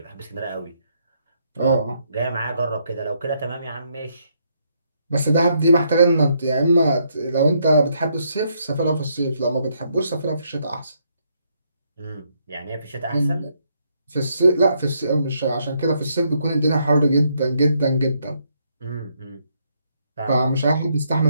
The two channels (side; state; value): both; inverted; correlation -0.74